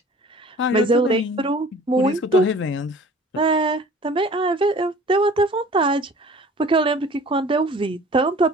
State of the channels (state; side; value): normal; both; correlation 0.47